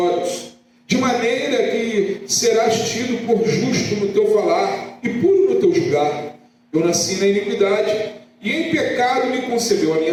de maneira que serás tido por justo no teu falar e puro no teu julgar. Eu nasci na iniquidade, e em pecado me concebeu a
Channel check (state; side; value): identical; both; correlation 1.00